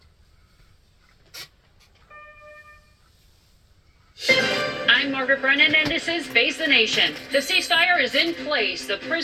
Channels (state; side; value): identical; both; correlation 1.00